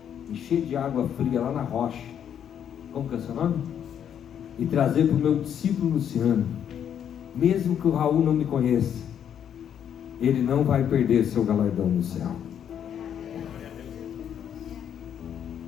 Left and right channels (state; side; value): quieter; right; 9.0 dB